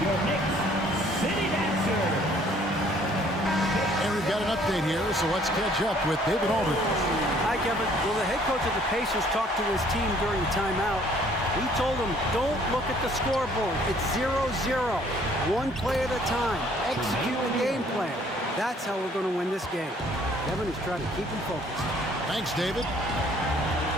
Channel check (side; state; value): both; normal; correlation 0.60